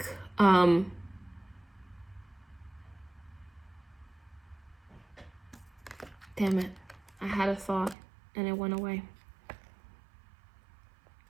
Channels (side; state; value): left; drops out; at 8.0 s